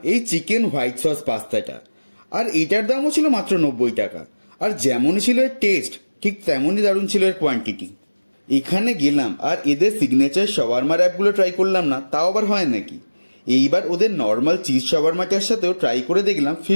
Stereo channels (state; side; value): inverted; both; correlation -1.00